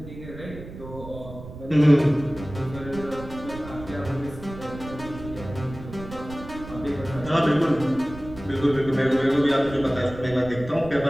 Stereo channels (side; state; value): right; noise; rumble, 13 dB below the sound